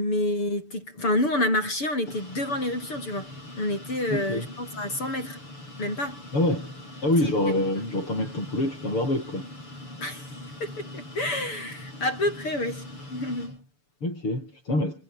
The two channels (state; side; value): late; right; 6.9 ms